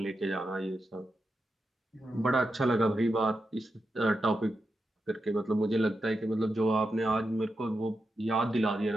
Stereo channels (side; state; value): both; normal; correlation 0.88